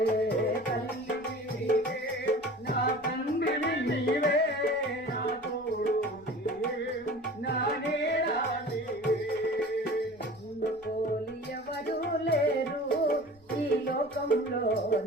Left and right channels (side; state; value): left; noise; rumble, 28 dB below the sound